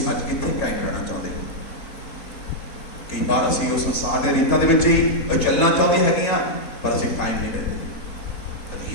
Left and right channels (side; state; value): right; late; 4.3 ms